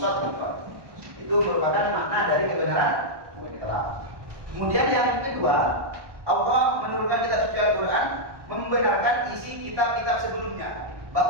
Itu merupakan makna dari kebenaran mutlak. Kemudian yang kedua, Allah menurunkan kitab suci Al-Quran membenarkan isi kitab-kitab sebelumnya.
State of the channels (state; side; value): late; left; 1.2 ms